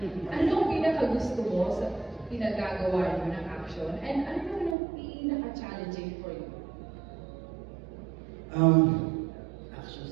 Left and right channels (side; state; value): left; drops out; at 4.8 s